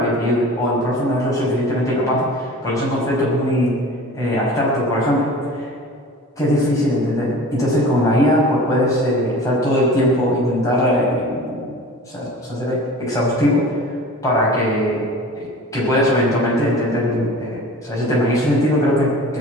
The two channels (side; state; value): both; normal; correlation 0.40